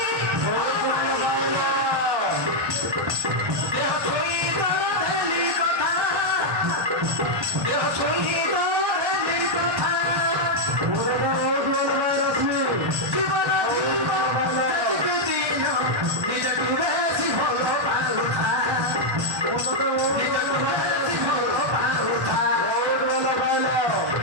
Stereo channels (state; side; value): late; left; 1.2 ms